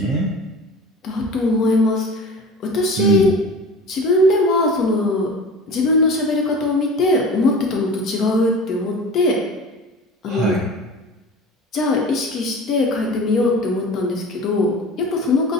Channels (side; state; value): both; normal; correlation 0.37